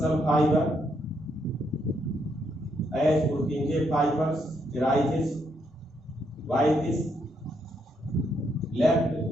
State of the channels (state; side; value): normal; both; correlation 0.76